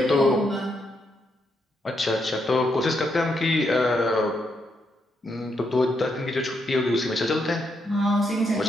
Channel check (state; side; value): normal; both; correlation 0.79